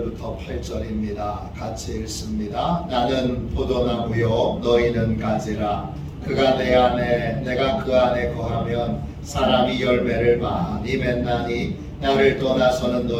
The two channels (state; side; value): identical; both; correlation 1.00